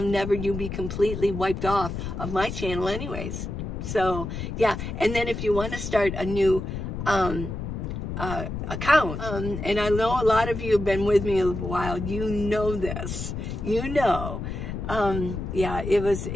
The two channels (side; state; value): left; noise; rumble, 5 dB below the sound